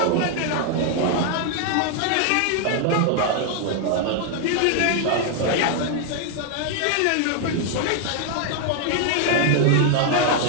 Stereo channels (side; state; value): both; different; correlation 0.00